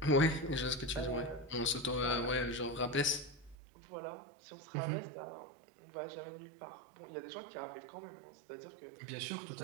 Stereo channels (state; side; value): drops out; left; at 3.6 s